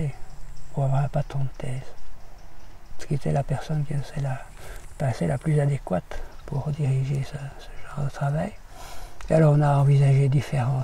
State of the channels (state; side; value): identical; both; correlation 1.00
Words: pour avoir un patron de thèse, ce qui était la personne qui paraissait la plus adéquate pour diriger ce genre de travail. Et alors on a envisagé différents